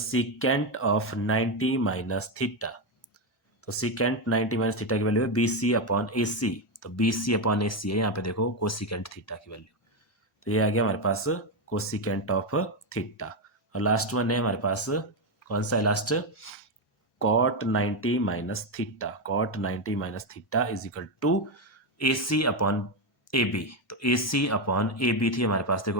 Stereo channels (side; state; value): both; normal; correlation 0.08